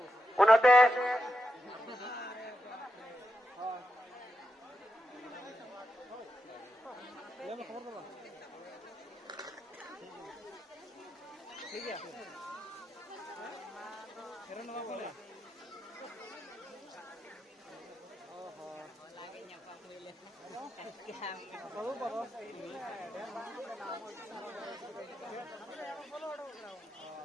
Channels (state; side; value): normal; both; correlation 0.86